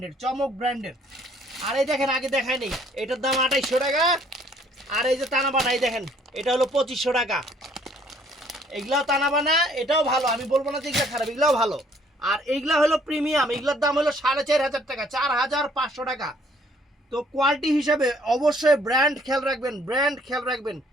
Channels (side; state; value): both; normal; correlation 0.62